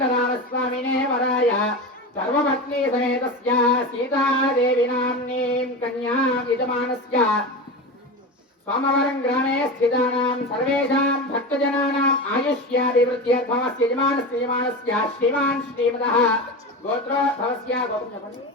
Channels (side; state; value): both; normal; correlation 0.24